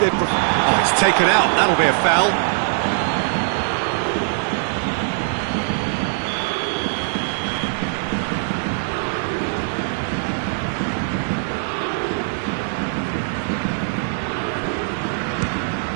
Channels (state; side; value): silent; left; digital silence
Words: Oh, it's taken out. That'll be a foul.